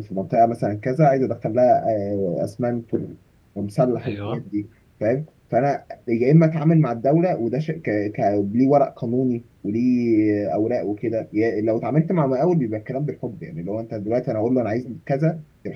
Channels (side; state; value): both; identical; correlation 1.00